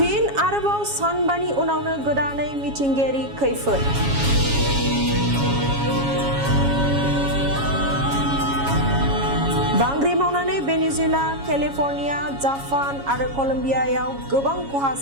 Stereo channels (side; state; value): left; late; 7.3 ms